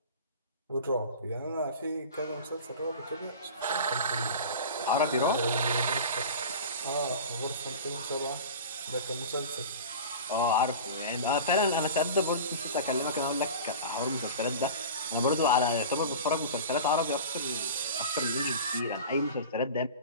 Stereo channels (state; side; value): inverted; both; correlation -0.34